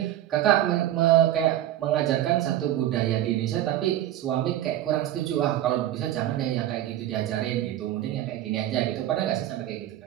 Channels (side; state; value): left; quieter; 12.9 dB